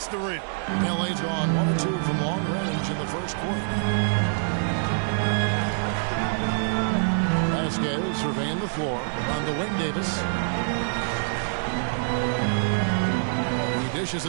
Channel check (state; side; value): silent; left; digital silence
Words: the rim. LA's gone 1 or 2 from long range in the first quarter. Vasquez surveying the floor on to Wayne Davis. He dishes